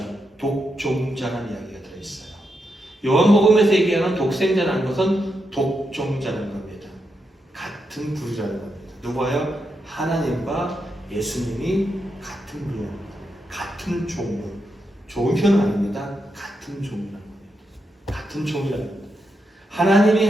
독종자라는 이야기가 들어있어요. 요한복음에서 얘기하는 독생자라는 것은 독종자라는 겁니다. 같은 부류라는 겁니다. 누구예요? 하나님과 예수님이 같은 부류입니다. 같은 종류. 좋은 표현은 아닙니다. 같은 종류라는 겁니다. 같은 종류라는 겁니다. 하나님이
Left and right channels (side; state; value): both; normal; correlation 0.84